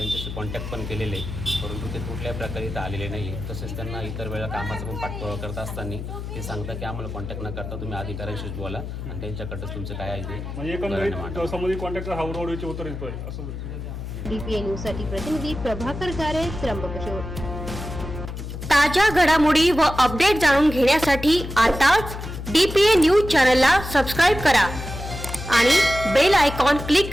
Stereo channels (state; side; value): noise; left; hum, 8 dB below the sound